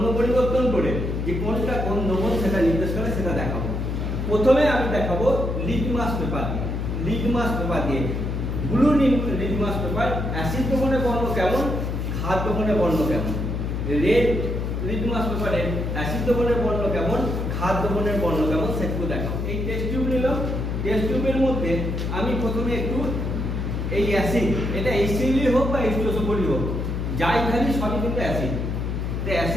পরিবর্তন করে যে কোনটা কোন দ্রবণ সেটা নির্দেশ করে, সেটা দেখাবো। প্রথমে আমি দেখাবো লিটমাস পেপার দিয়ে। লিটমাস পেপার দিয়ে, ব্লু লিটমাস পেপার, অ্যাসিড দ্রবণের বর্ণ কেমন, ক্ষার দ্রবণের বর্ণ কেমন। রেড লিটমাস পেপারে অ্যাসিড দ্রবণের বর্ণ কেমন, ক্ষার দ্রবণের বর্ণ কেমন, সেটুকু দেখাবো। এই টেস্ট টিউব নিলাম। টেস্ট টিউবের মধ্যে আমি প্রথমে একটু এই অ্যাসিড, এটা HCl হোক বা H2SO4 হোক, যাই ঢালি সবই কিন্তু অ্যাসিড। তো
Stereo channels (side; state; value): left; noise; hum, 2 dB below the sound